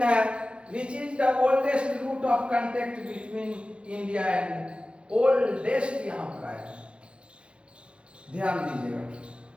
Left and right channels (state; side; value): late; left; 0.057 ms